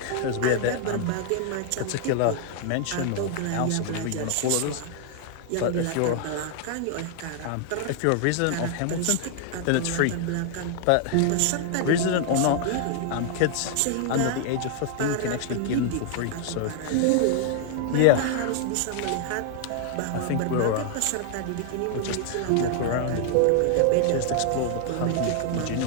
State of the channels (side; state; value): both; different; correlation 0.00